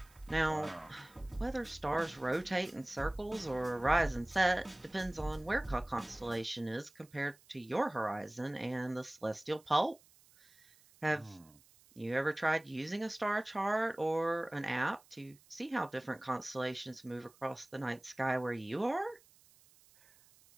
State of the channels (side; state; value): right; noise; hiss, 27 dB below the sound